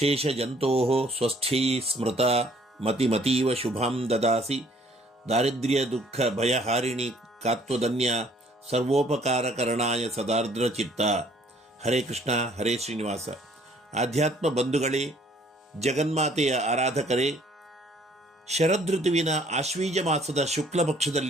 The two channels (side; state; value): both; normal; correlation 0.60